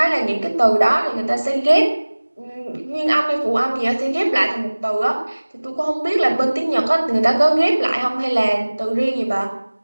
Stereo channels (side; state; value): both; inverted; correlation -1.00